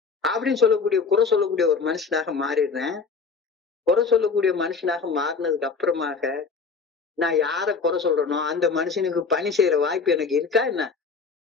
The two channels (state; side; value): quieter; right; 5.0 dB